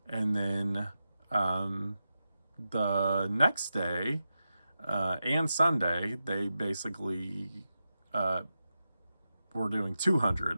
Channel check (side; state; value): both; inverted; correlation -0.89